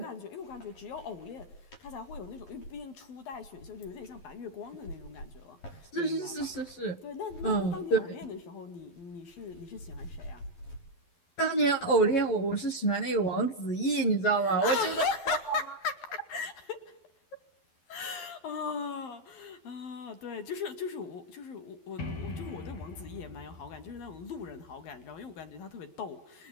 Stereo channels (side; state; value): right; late; 12 ms